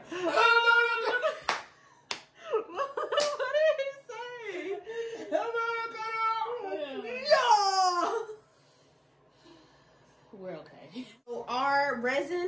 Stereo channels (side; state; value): both; identical; correlation 1.00